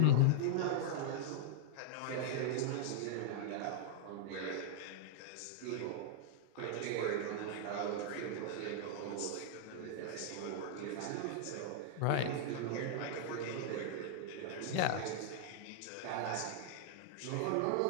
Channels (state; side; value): different; both; correlation -0.01